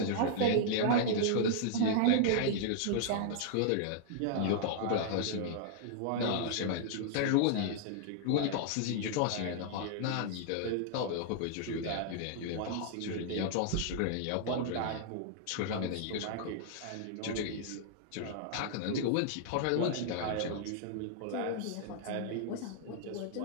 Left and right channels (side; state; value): both; different; correlation -0.01